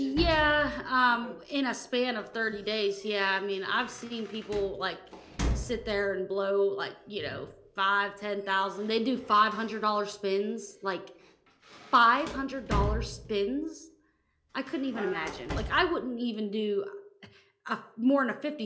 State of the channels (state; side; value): identical; both; correlation 1.00